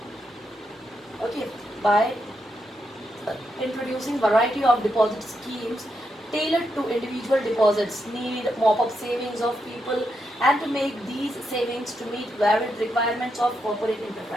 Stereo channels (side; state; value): both; normal; correlation 0.83